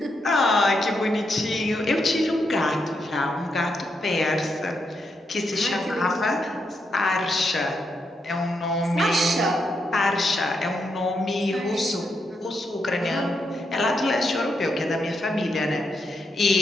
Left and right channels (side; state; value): both; normal; correlation 0.81